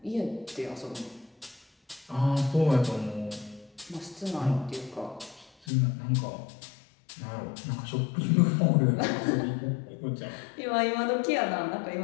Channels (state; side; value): drops out; right; at 5.5 s